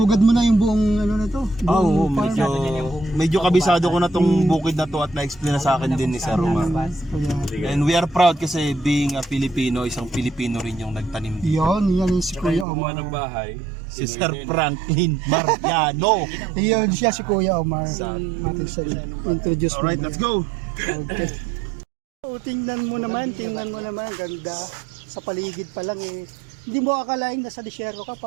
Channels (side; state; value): left; drops out; at 12.7 s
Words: mo na yung buong ano na to. Ah, oo, buong farm. medyo kabisado ko na tong bukid na to at na-explain na sa akin din ni Sir Romar. Kaya, And we are proud kasi being a Filipino, isang Pilipino rin yung nagtanim dito. yan yung si Saka Kuya yung gumawa Omar. ng bahay. Si Sir Franklin Mariano. Yan siya si Kuya Omar. Atin sa introduce mo. Alright, let's go! Okay. So, tingnan mo naman. Ganda. Sa paligid pa lang eh. Hindi mo akalain nasa disyerto ka,